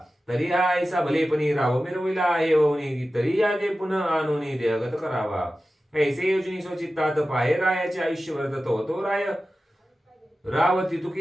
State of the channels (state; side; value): normal; both; correlation 0.94